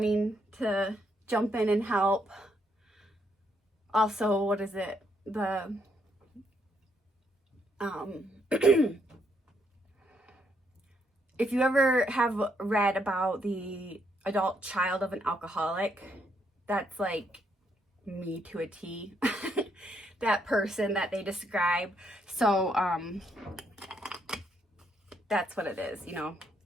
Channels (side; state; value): both; normal; correlation 0.74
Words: to jump in and help. also, what is it? The, if you ever have read about the adult child of an alcoholic, that's like me to a T. That person that they describe. So, that's what it is, you know,